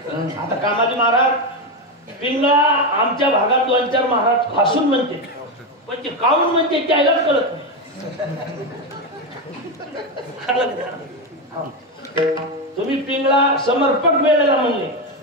आता कामाजी महाराज पिंगळा आमच्या भागात 2-4 महाराज हसून म्हणते पण ते काऊन म्हणते त्यालाच कळत नाही. तुम्ही पिंगळा समर्पक वेळेला म्हणले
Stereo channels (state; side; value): normal; both; correlation 0.11